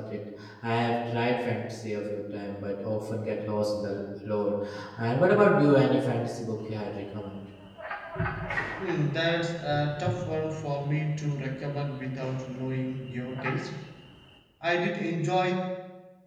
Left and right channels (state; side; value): identical; both; correlation 1.00